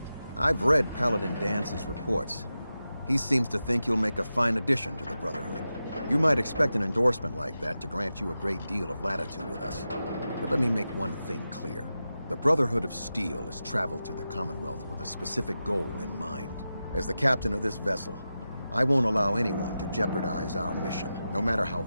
I've read Paladin Dance's reports. He seems to think you'll make a fine addition to the Brotherhood. You might expect an endorsement like that to grant you a great deal of latitude with us. But let me make one thing clear. The Brotherhood of Steel has traveled to the Commonwealth with a specific goal in mind. As the captain of this vessel, I won't allow anyone to jeopardize our mission, no matter how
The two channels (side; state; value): both; inverted; correlation -0.92